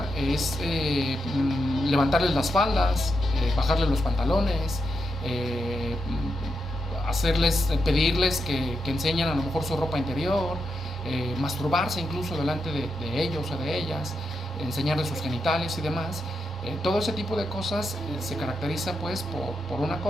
es levantarles las faldas, bajarles los pantalones, pedirles que enseñen a lo mejor su ropa interior, masturbarse incluso delante de ellos o de ellas, enseñarles sus genitales y demás. Todo ese tipo de cosas se caracteriza pues por un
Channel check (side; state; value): both; normal; correlation 0.84